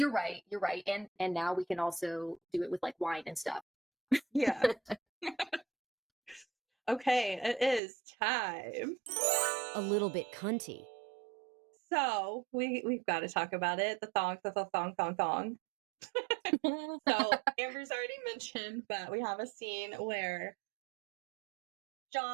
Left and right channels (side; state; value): left; drops out; at 7.8 s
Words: right. And now we can also do it with like wine and stuff. Yeah. Okay, it is time. A little bit cunty. So we've got to talk about it. The thong. So Amber's already mentioned, but we have a scene where